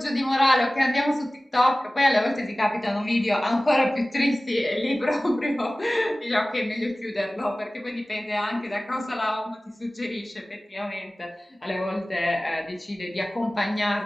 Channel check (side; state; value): both; normal; correlation 0.97